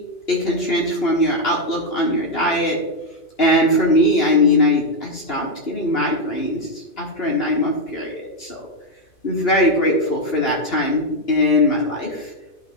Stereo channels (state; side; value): late; right; 2.9 ms